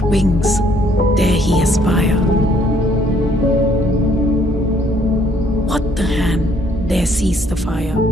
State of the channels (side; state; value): both; normal; correlation 0.65